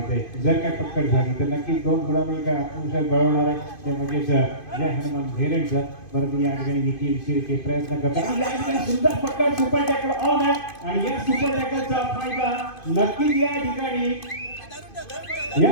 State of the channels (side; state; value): right; late; 2.5 ms